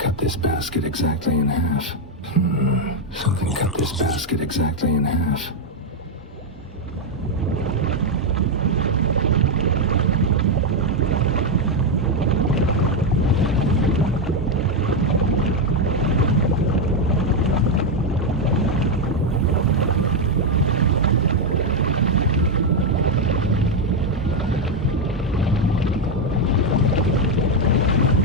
this basket exactly in half. Something cut this basket exactly in half.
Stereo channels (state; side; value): normal; both; correlation 0.04